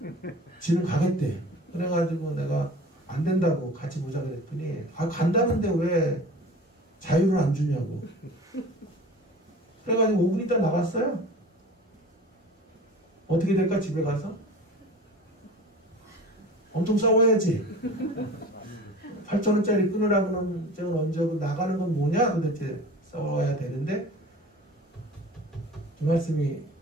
지는 가겠대. 그래가지고 내가 안 된다고 같이 보자 그랬더니 간다는데 왜 자유를 안 주냐고. 그래가지고 5분 있다 나갔어요. 어떻게 될까 집에 가서? 엄청 싸워야지. 8,000원짜리 끊으라고 하면 언제고 나가는 건 뭐냐 도대체 싸워야 되는데 그 말씀이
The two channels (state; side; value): normal; both; correlation 0.40